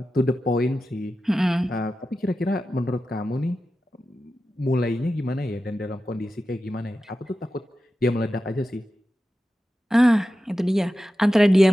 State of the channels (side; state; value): both; normal; correlation 0.92